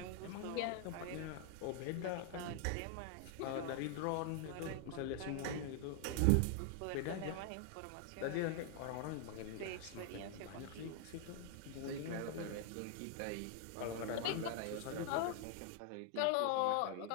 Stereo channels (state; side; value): different; both; correlation 0.00